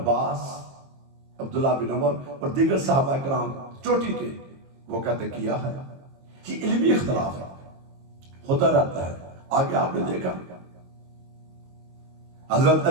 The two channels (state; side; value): late; left; 22 ms